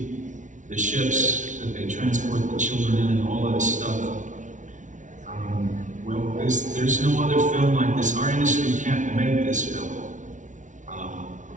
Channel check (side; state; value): left; late; 0.37 ms